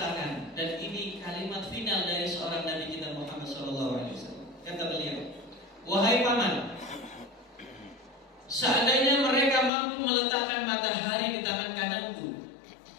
dan ini kalimat final dari seorang Nabi kita Muhammad Sallallahu Alaihi Wasallam. Kata beliau, wahai paman, seandainya mereka mampu meletakkan matahari di tangan kananku,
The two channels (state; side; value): drops out; right; at 9.7 s